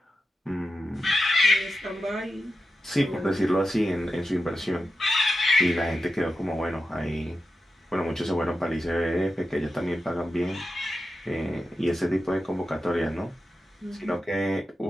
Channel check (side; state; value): both; normal; correlation 0.90